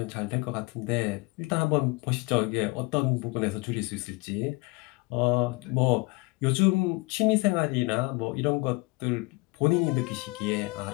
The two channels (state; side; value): quieter; right; 25.8 dB